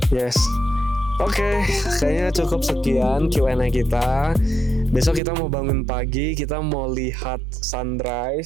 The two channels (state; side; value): drops out; left; at 5.2 s